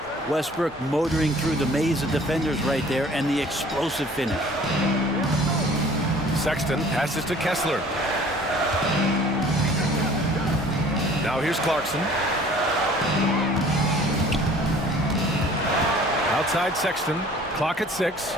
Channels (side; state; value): both; normal; correlation 0.51